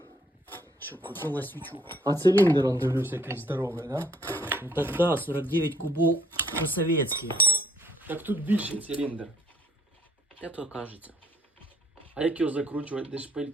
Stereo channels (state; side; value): normal; both; correlation 0.64